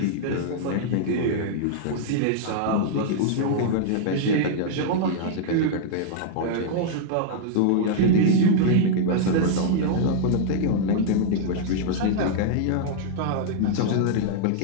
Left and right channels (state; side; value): different; both; correlation -0.01